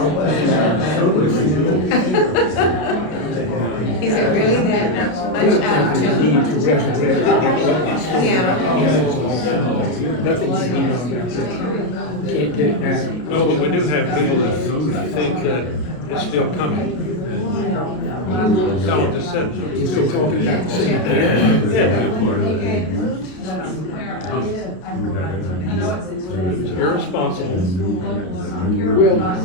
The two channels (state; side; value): late; right; 33 ms